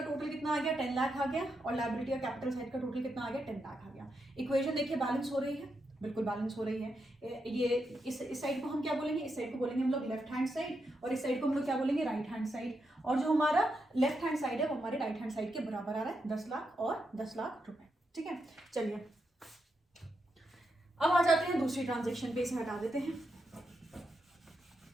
टोटल कितना आ गया, 10 लाख आ गया, और लायबिलिटी या कैपिटल साइड का टोटल कितना आ गया, 10 लाख आ गया। इक्वेशन देखिए बैलेंस हो रही है, बिल्कुल बैलेंस हो रही है। ये इस साइड को हम क्या बोलेंगे, इस साइड को बोलेंगे हम लोग लेफ्ट हैंड साइड, और इस साइड को हम लोग क्या बोलेंगे, राइट हैंड साइड। और जो हमारा लेफ्ट हैंड साइड है वो हमारे राइट हैंड साइड के बराबर आ रहा है, 10 लाख और 10 लाख रुपए, ठीक है। चलिए अब आ जाते हैं दूसरी ट्रांजैक्शन पे, इसे हटा देते हैं।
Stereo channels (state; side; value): normal; both; correlation 0.84